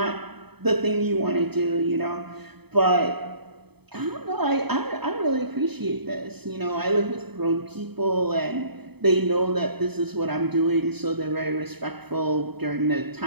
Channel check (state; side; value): late; left; 0.98 ms